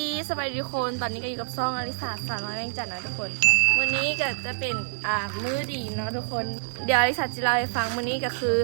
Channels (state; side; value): silent; left; digital silence